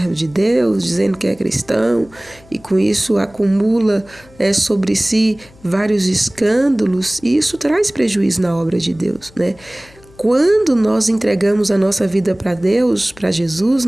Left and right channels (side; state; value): left; noise; hum, 26 dB below the sound